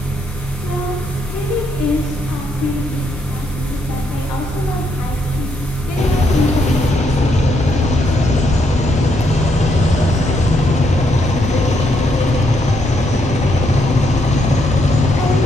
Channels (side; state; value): both; normal; correlation 0.76